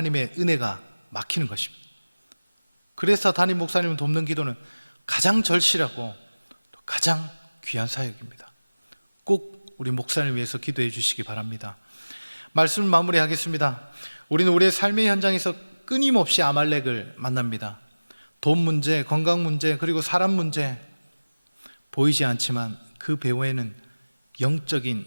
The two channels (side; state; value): both; inverted; correlation -1.00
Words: 은혜가 막히는 것입니다. 그래서 담임 목사님을 돕는 기도는 가장 절실하고 가장 귀한 사역입니다. 꼭 우리 목사님을 위해서 기도해 주시기 바랍니다. 말씀을 마무리하겠습니다. 우리는 우리의 삶의 현장에서 끊임없이 아말렉을 만납니다. 돈 문제, 건강 문제, 그리고 사람 문제, 보이지 않지만 그 배후에는